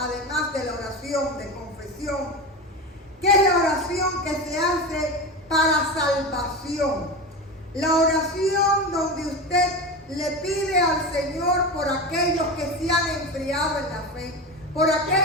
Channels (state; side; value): normal; both; correlation 0.24